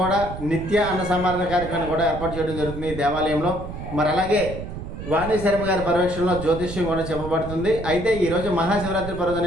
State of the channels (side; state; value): right; noise; rumble, 9 dB below the sound